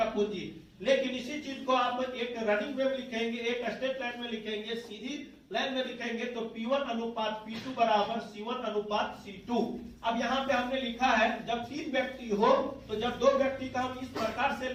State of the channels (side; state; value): both; identical; correlation 1.00